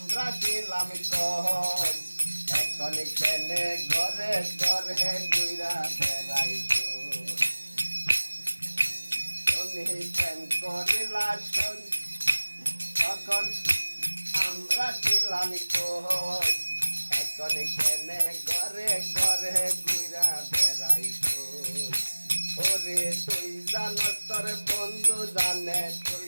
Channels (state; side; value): inverted; both; correlation -1.00